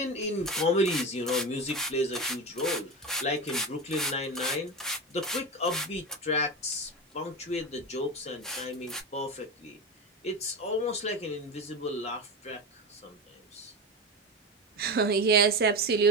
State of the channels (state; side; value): normal; both; correlation 0.22